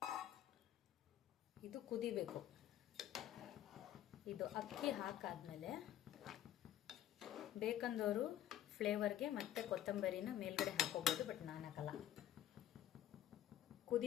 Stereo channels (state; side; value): quieter; right; 12.2 dB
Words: ಇದು ಕುದಿಬೇಕು. ಇದು ಅಕ್ಕಿ ಹಾಕಾದ್ಮೇಲೆ ಬೇಕಂದವರು ಫ್ಲೇವರ್ಗೆ ಮತ್ತೆ ಕೊತ್ತಂಬರಿನ ಮೇಲ್ಗಡೆ ಹಾಕೋಬೋದು, ಬಟ್ ನಾನು ಹಾಕಲ್ಲ.